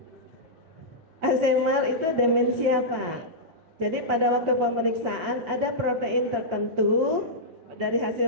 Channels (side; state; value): left; late; 6.2 ms